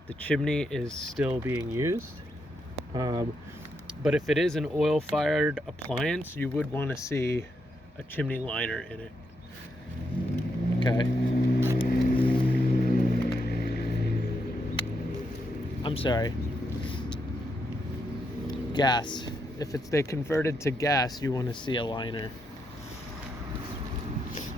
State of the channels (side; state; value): both; normal; correlation 0.81